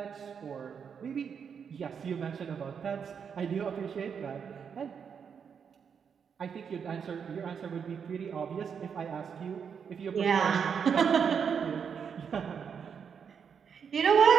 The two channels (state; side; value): quieter; left; 6.9 dB